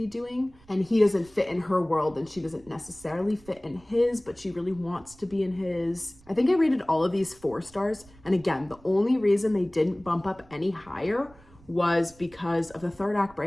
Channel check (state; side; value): noise; right; rumble, 26 dB below the sound